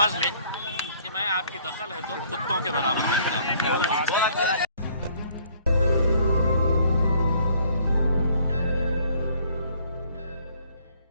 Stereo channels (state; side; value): inverted; both; correlation -0.61